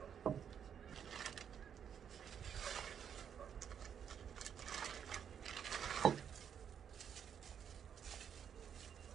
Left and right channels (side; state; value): left; quieter; 8.2 dB